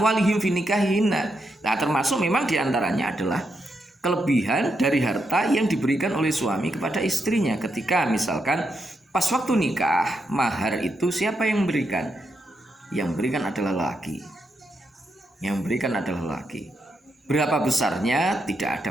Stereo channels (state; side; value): normal; both; correlation 0.82